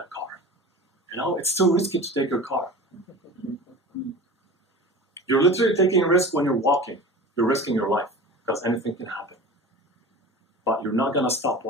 car? It's too risky to take your car. You're literally taking a risk when you're walking. You're risking your life because anything can happen. But you're not going to stop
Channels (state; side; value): normal; both; correlation 0.35